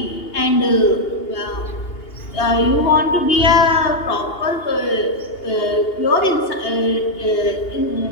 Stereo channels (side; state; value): right; late; 2.8 ms